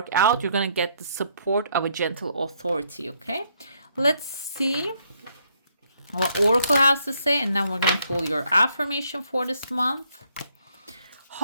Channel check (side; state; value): both; inverted; correlation -0.70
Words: out. You're going to get the support of a gentle authority. Okay, let's see what Oracle has to say, and then we're going to pull your affirmation for this month.